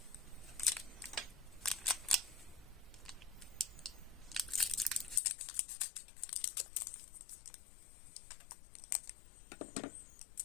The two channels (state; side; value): drops out; right; at 5.2 s